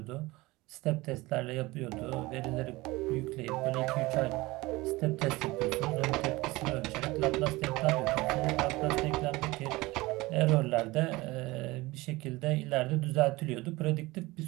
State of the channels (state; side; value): quieter; left; 21.1 dB